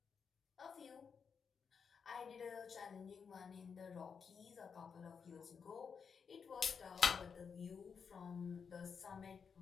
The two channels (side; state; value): right; quieter; 6.2 dB